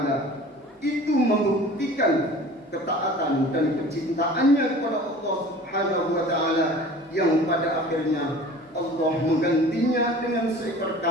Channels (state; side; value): normal; both; correlation 0.43